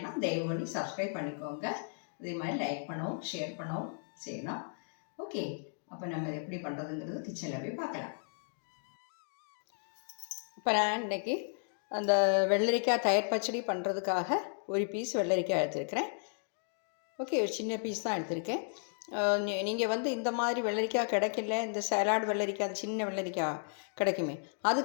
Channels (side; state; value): right; silent; digital silence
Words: தயவு பண்ணி சப்ஸ்கிரைப் பண்ணிக்கோங்க. அதே மாதிரி லைக் பண்ணவும் ஷேர் பண்ணவும் செய்யணும். ஓகே, அப்போ நம்ம எப்படி பண்ணுறதுங்கிறது கிச்சனில் போய் பார்க்கலாம். இப்போ நான் இன்றைக்கி அந்த வெள்ளரிக்காய் தயிர் பச்சடி பண்ணுறதுக்காக ஒரு பீஸ் வெள்ளரிக்காய் எடுத்துருக்கிறேன். ஓகே, ஒரு சின்ன பீஸ் தான் எடுத்திருக்கேன். நீங்கள் இந்த மாதிரி வெள்ளரிக்காய் கிடைக்கல, இந்த சலாட் வெள்ளரிக்காய், அது சின்ன வெள்ளரிக்காய் கிடைக்குமே, அது